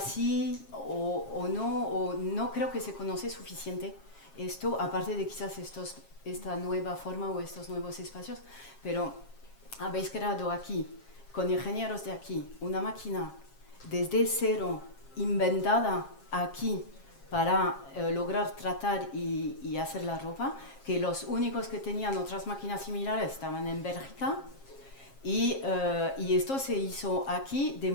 o no creo que se conoce suficiente esto, aparte de quizás esta nueva forma o estos nuevos espacios, pero habéis creado aquí, con ingenieros de aquí, una máquina desde cero, inventada aquí para lograr tratar y hacer la ropa, que los únicos que tenían otras máquinas similares estaban en Bélgica, y esto se hizo aquí de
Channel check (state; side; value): late; right; 7.4 ms